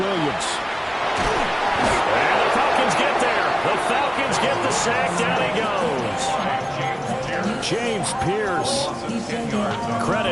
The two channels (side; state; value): both; identical; correlation 1.00